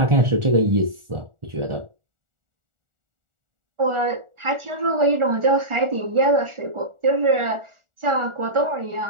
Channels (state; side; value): late; left; 1.4 ms